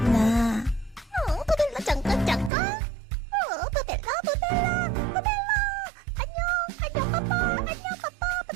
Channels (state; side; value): drops out; left; at 2.5 s